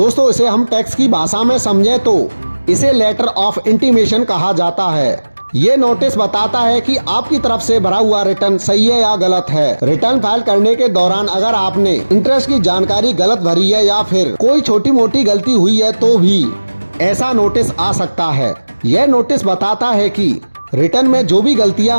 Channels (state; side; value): inverted; both; correlation -1.00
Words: इसे हम टैक्स की भाषा में समझें तो इसे लेटर ऑफ इंटीमेशन कहा जाता है। ये नोटिस बताता है कि आपकी तरफ से भरा हुआ रिटर्न सही है या गलत है। रिटर्न फाइल करने के दौरान अगर आपने इंटरेस्ट की जानकारी गलत भरी है या फिर कोई छोटी मोटी गलती हुई है तो भी ऐसा नोटिस आ सकता है। यह नोटिस बताता है कि रिटर्न में जो भी गलतियां